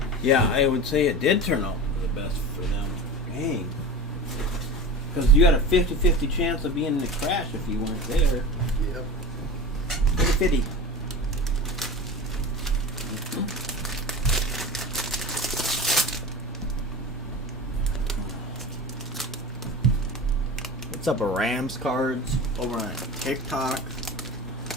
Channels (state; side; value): normal; both; correlation 0.30